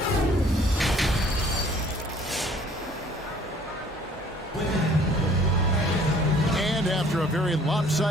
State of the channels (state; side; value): normal; both; correlation 0.55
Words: And after a very